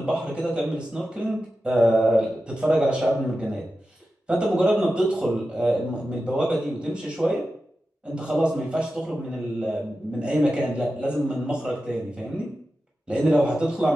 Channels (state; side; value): normal; both; correlation 0.92